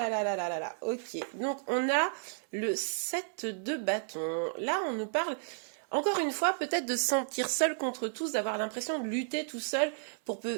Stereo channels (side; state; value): left; silent; 56 dB below the other